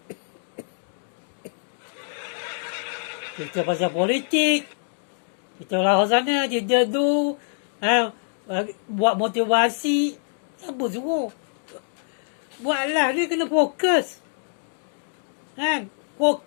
Cerita pasal politik. Kita lah sana je tu. Buat motivasi. Siapa suruh? Buatlah, dia kena fokus. Kan?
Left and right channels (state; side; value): silent; right; digital silence